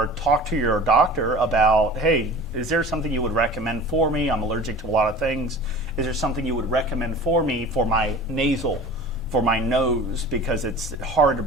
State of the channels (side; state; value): both; normal; correlation 0.40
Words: talk to your doctor about, hey, is there something you would recommend for me? I'm allergic to a lot of things. Is there something you would recommend for me for my nasal, for my nose, because it's hard to